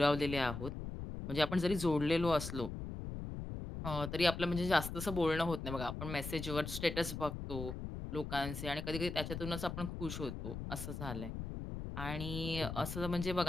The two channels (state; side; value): noise; left; rumble, 6 dB below the sound